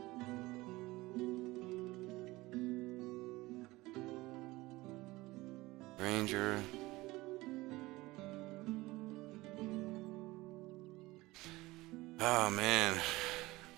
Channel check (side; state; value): left; quieter; 20.1 dB